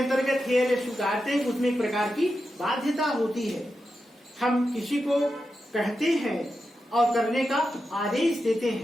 हेयर स्वीकारते हैं, उसमें एक प्रकार की बाध्यता होती है। हम किसी को कहते हैं और करने का आदेश देते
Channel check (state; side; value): normal; both; correlation 0.89